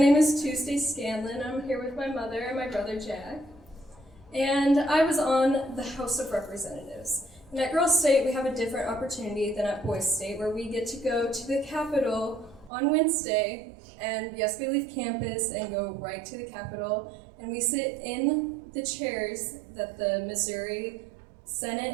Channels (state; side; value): drops out; left; at 12.7 s